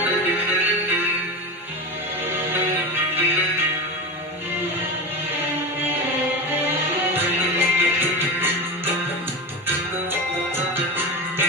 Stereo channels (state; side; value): normal; both; correlation 0.22